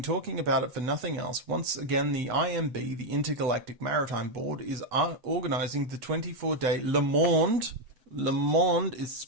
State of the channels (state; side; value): late; left; 8.1 ms